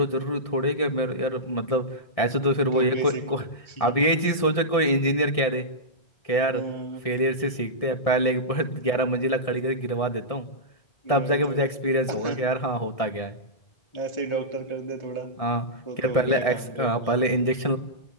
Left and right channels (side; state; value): right; late; 1.7 ms